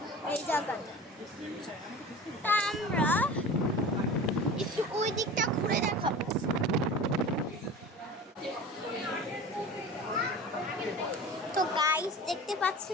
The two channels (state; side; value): normal; both; correlation 0.36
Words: এই জায়গাটা। তা আমরা একটু ওই দিকটা ঘুরে দেখাবো। তো গাইস দেখতে